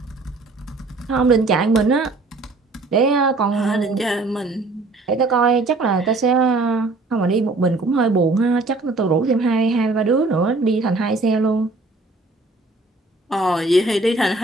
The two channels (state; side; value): quieter; left; 3.3 dB